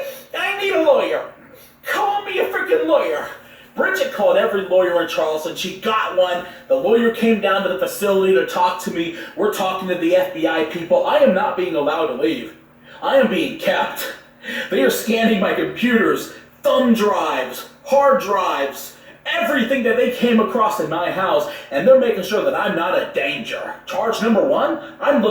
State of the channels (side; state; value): both; identical; correlation 1.00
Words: I need a lawyer. Call me a freaking lawyer. Bridget called every lawyer in Charleston. She got one. The lawyer came down to the facility to talk to me. We're talking to the FBI people. I am not being allowed to leave. I am being kept. They are scanning my computers, thumb drives, hard drives, everything that they came across in my house, and they're making sure that I'm not a danger. Charge number 1, I'm